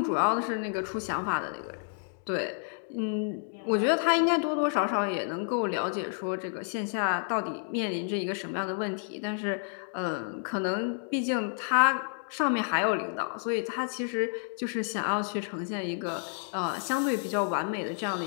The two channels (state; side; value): silent; right; digital silence